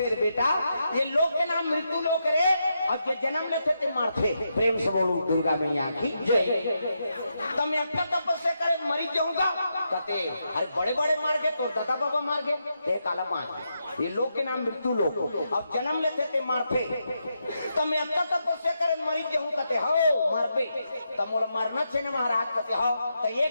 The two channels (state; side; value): inverted; both; correlation -0.83